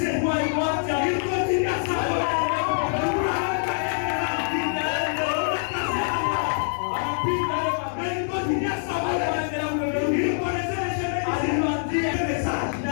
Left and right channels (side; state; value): right; silent; digital silence